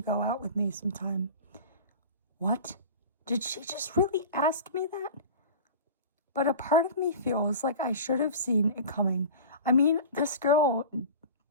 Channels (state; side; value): inverted; both; correlation -0.35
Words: go out with me sometime. What? Did she just really ask me that? But a part of me feels like I should have seen it coming. I mean, this girl